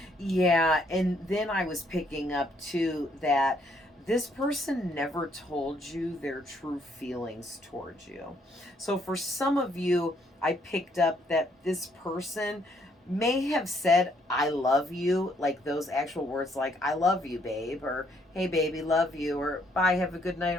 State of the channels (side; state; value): both; normal; correlation 0.69